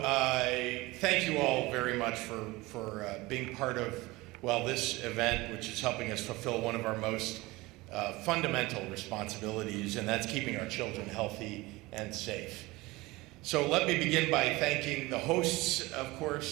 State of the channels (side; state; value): left; quieter; 21.2 dB